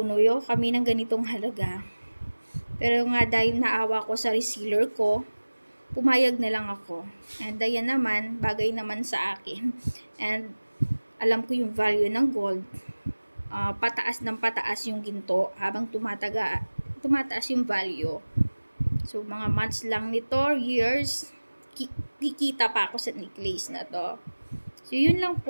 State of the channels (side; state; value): both; inverted; correlation -1.00